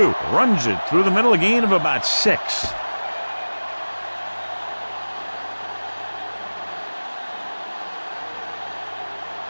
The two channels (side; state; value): both; inverted; correlation -1.00